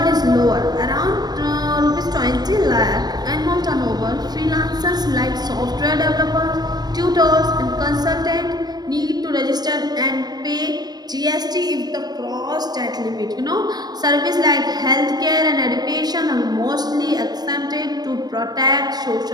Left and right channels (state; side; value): late; left; 0.19 ms